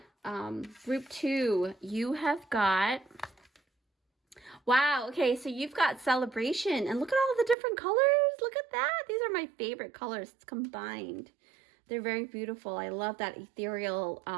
Group two, you have got... Wow, okay, so you've got celebration, and look at all the different colors. Look at that. These are my favorite colors combined. They're very beautiful. I love that ethereal,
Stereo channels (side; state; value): left; drops out; at 7.6 s